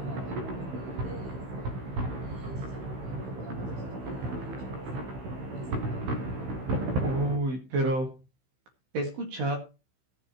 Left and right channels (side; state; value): left; late; 16 ms